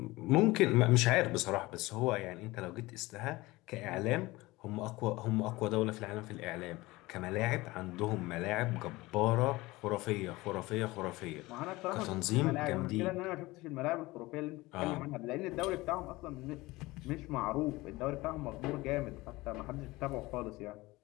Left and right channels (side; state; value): right; quieter; 20.6 dB